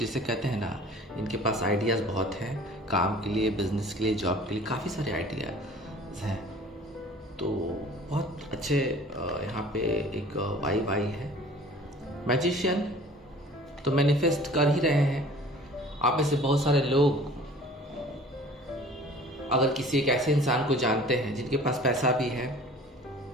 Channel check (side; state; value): both; normal; correlation 0.47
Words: कहते हैं ना, इनके पास आइडियाज़ बहुत हैं काम के लिए, बिजनेस के लिए, जॉब के लिए, काफ़ी सारे आइडियाज़ हैं। तो बहुत अच्छे यहाँ पे एक वाइब आई है। मैजिशियन तो मैनिफेस्ट कर ही रहे हैं। आप में से बहुत सारे लोग अगर किसी एक ऐसे इंसान को जानते हैं जिनके पास पैसा भी है,